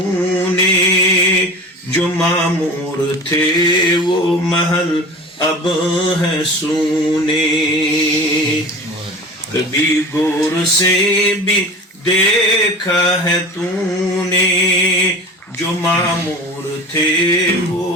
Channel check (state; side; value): normal; both; correlation 0.36